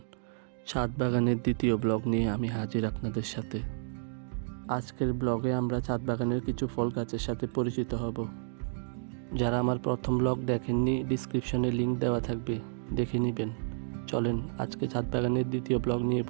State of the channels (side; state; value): left; silent; digital silence